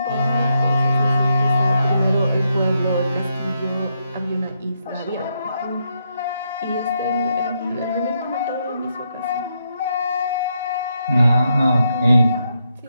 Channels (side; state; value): both; inverted; correlation -0.80